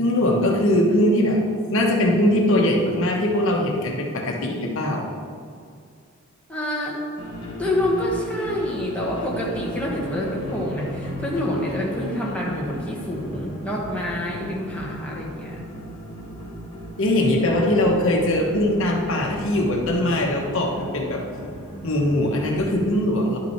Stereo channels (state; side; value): normal; both; correlation 0.45